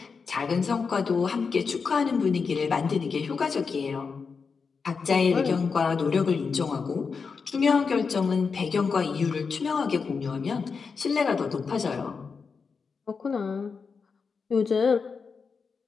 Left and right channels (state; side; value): quieter; right; 5.3 dB